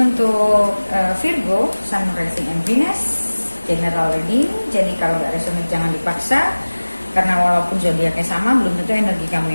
untuk Virgo, Sun, Rising, and Venus. General reading, jadi kalau nggak resonate jangan dipaksa. Karena walaupun zodiaknya sama, belum tentu energi kamu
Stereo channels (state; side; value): inverted; both; correlation -1.00